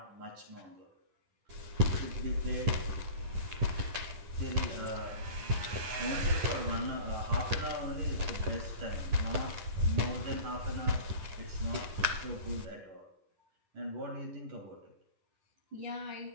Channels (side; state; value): left; late; 10 ms